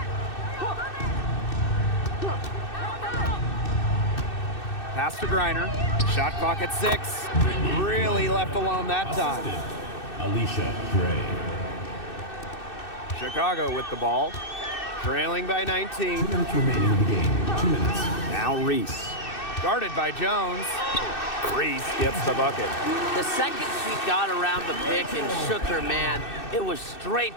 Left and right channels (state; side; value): late; right; 2.6 ms